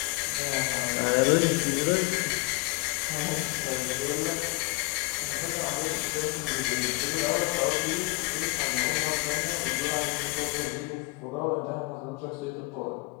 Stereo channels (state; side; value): quieter; right; 24.9 dB